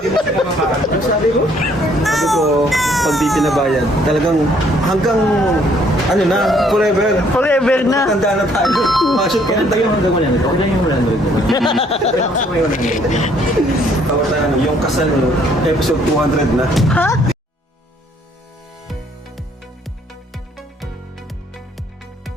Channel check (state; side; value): normal; both; correlation 0.64